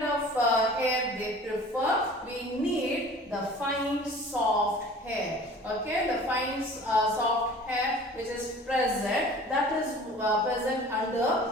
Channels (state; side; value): normal; both; correlation 0.45